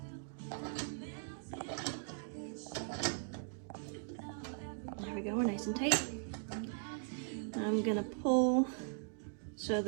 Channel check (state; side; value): silent; left; digital silence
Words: There we go, we're nice and tight. I'm going to pull so